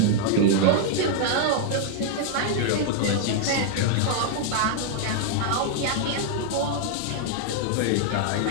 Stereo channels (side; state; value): both; different; correlation 0.00